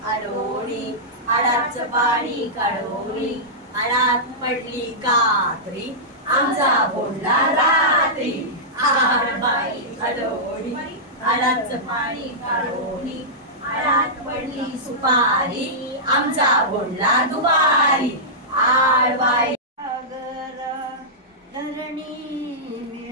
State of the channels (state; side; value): normal; both; correlation -0.13